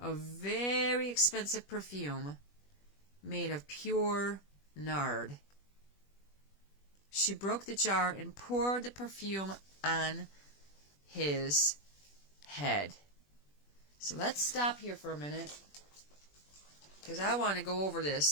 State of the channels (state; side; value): late; right; 21 ms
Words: very expensive perfume made of pure nard. She broke the jar and poured the perfume on his head. So let's stop here for a minute, because I want to go over